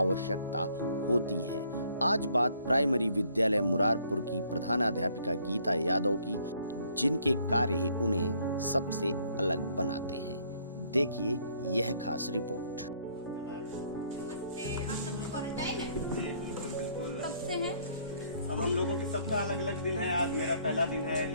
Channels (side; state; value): both; inverted; correlation -0.64